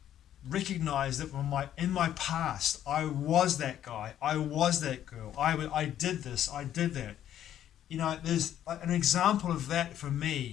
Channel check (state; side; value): quieter; right; 11.1 dB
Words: recognized that in my past I was that guy, I was that girl, I did this, I did that. You know, there's an example of that for